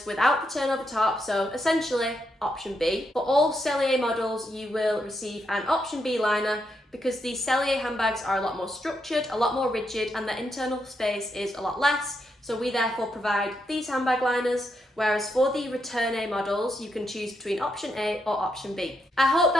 without the turn over top, so essentially option B. For all Cellier models, you will receive an option B liner because the Cellier handbags are a lot more structured, a lot more rigid, and the internal space is a lot less. So we therefore provide these handbag liners, whereas for the Return A models, you can choose between option A or option B. I hope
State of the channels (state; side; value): normal; both; correlation 0.81